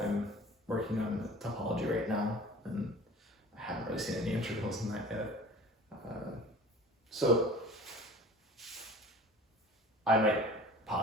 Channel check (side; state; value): both; normal; correlation 0.44